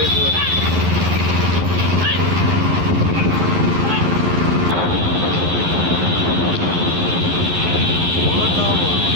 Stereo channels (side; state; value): left; late; 11 ms